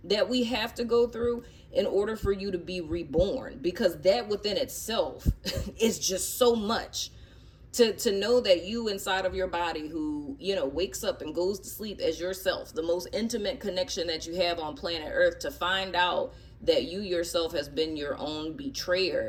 that we have to go through in order for you to be reborn. Because that within itself is just so much. To know that you inside of your body who, wakes up and goes to sleep as yourself, the most intimate connection that you have on planet Earth, to find out that you yourself has been your own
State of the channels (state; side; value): identical; both; correlation 1.00